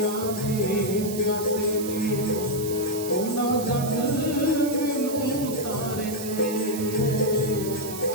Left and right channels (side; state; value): right; noise; hiss, 10 dB below the sound